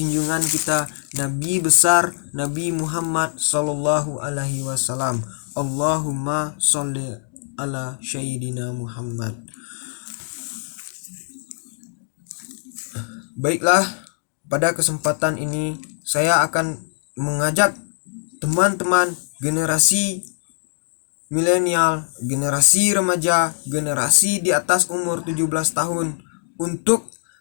kita Nabi besar Nabi Muhammad sallallahu alaihi wasallam. Allahumma sholli ala sayyidina Muhammad. Baiklah, pada kesempatan ini saya akan mengajak teman-teman generasi milenial, generasi remaja, generasi di atas umur 17 tahun untuk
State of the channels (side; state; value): right; silent; digital silence